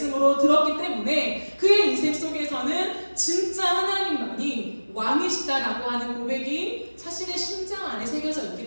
들었기 때문에 그의 인생 속에서는 진짜 하나님만이 왕이시다라고 하는 고백이 자신의 심장 안에 새겨져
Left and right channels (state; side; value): inverted; both; correlation -1.00